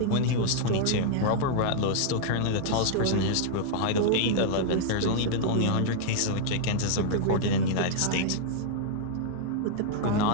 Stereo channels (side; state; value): both; different; correlation -0.01